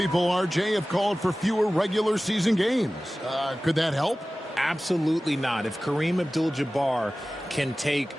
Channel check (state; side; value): normal; both; correlation 0.97